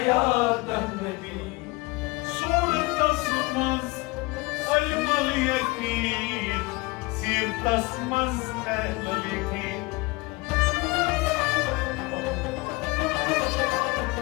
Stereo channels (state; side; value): quieter; right; 23.2 dB